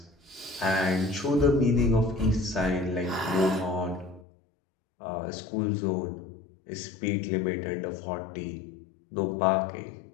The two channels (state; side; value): drops out; right; at 4.2 s